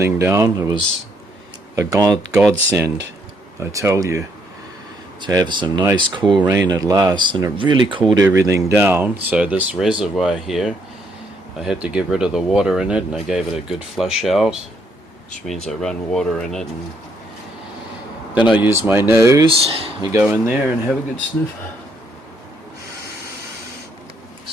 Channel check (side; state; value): both; normal; correlation 0.71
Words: down. It was a godsend, I tell you, to have some nice cool rain at last, and it really cooled everything down. So this reservoir here, I had to get rid of the water in it, and I gave it a good flush out, which means I run water in it, and then I use my nose. You go in there and have a good sniff.